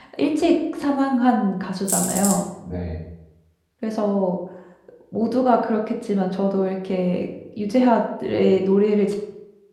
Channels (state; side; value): identical; both; correlation 1.00